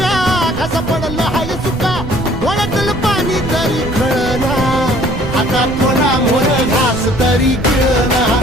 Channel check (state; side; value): noise; right; rumble, 9 dB below the sound